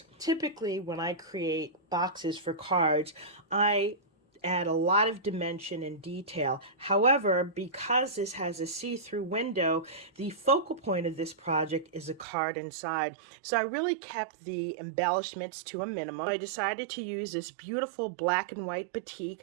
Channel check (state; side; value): drops out; left; at 12.2 s